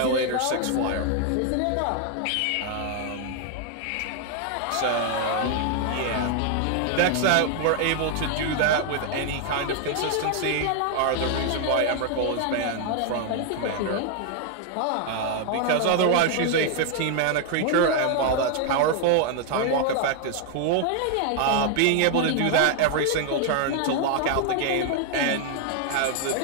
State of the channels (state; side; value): different; both; correlation 0.00